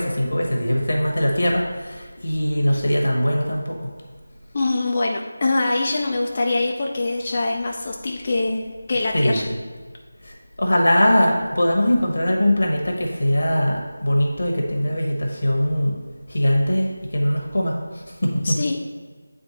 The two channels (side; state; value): both; inverted; correlation -0.97